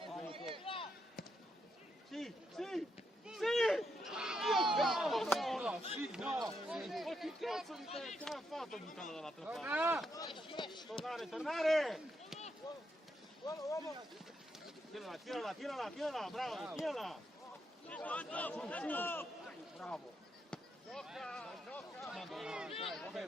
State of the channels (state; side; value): normal; both; correlation 0.80